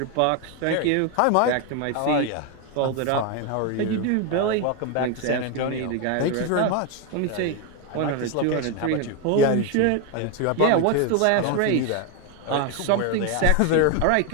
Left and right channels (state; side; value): different; both; correlation 0.02